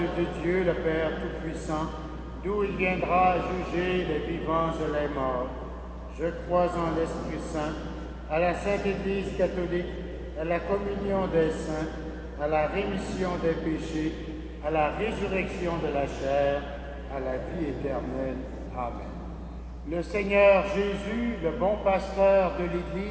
Dieu, le Père Tout-Puissant, d'où il viendra juger les vivants et les morts. Je crois en l'Esprit Saint, à la Sainte Église catholique, à la communion des saints, à la rémission des péchés, à la résurrection de la chair, à la vie éternelle. Amen. Le Seigneur Jésus, le bon pasteur de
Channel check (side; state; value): both; identical; correlation 1.00